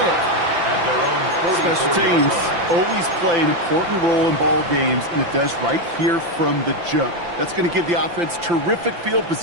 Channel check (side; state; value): left; late; 5.8 ms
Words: At their own 40, Special teams always play an important role in ball games, and it does right here from the jump. That's going to give the offense terrific field